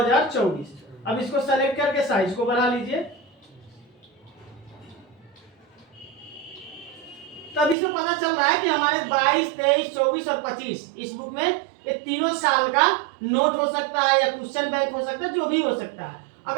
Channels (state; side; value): drops out; left; at 7.8 s